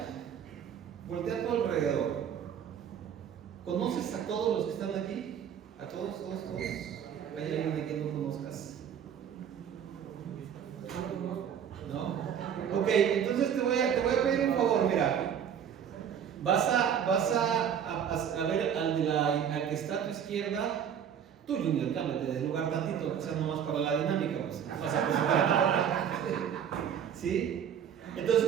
Voltea a tu alrededor. ¿Conoces a todos los que están aquí? ¿A todos? ¿Hay alguien de que no conozcas? ¿No? Ok, entonces te voy a pedir un favor, mira. Vas a ver al que está a tu izquierda. Tú, Junior, cámbiate de lugar tantito, que sea nomás para la dinámica, pues. Vas a presentar. ¿Sí? Entonces,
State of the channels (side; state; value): left; quieter; 8.5 dB